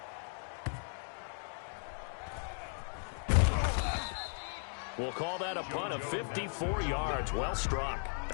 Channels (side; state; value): right; silent; 53 dB below the other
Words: We'll call that a punt of 54 yards. Well struck.